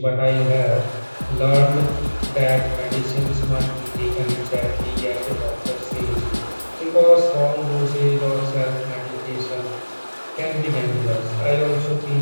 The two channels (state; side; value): inverted; both; correlation -1.00